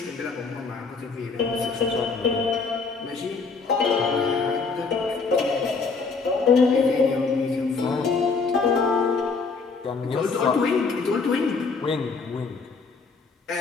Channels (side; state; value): right; quieter; 4.6 dB